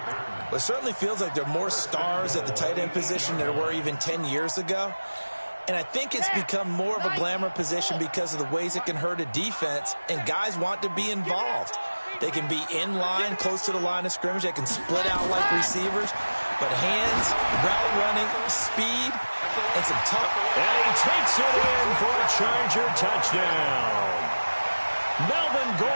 Well, it certainly feels like there are more stars at the tight end position than there were even 10 years ago. And I think it's become more of a glamour position because of the ways it can hurt a defense, and guys want to be involved. They can be in line, close to the line of scrimmage. They can split out like receivers. But hands, route running, speed, and some tough. And he takes it in for a Charger touchdown. Melvin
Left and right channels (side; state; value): both; inverted; correlation -1.00